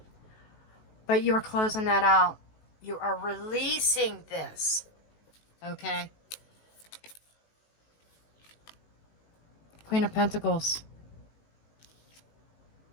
But you're closing that out. You are releasing this. Okay? Queen of Pentacles.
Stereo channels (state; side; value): late; right; 19 ms